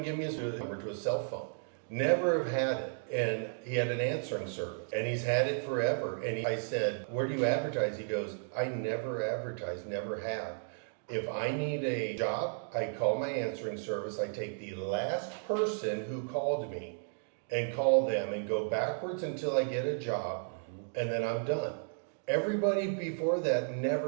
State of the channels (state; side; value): silent; left; digital silence